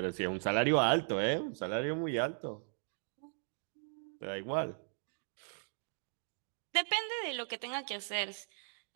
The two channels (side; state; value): left; silent; digital silence